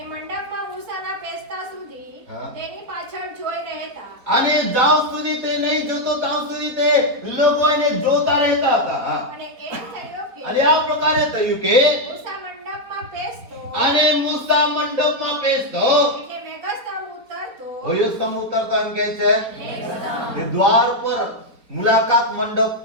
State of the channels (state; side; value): late; left; 4.2 ms